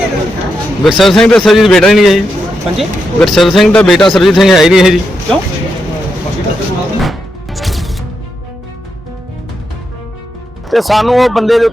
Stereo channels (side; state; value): both; normal; correlation 0.84